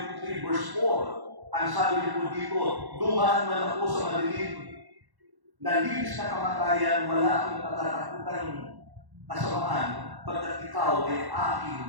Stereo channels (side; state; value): left; late; 1.1 ms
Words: verse 4, ang sabi niyo po dito, dumaan man ako sa madilim, nalilis na kamatayan, wala akong katatakutan kasamaan, pagkat ikaw ay aking